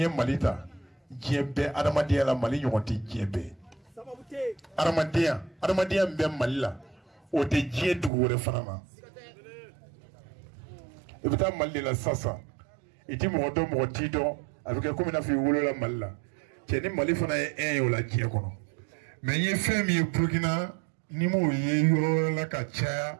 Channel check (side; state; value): left; drops out; at 8.1 s